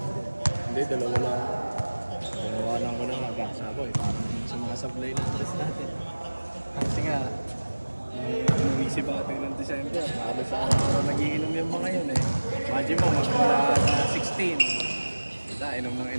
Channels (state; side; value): inverted; both; correlation -1.00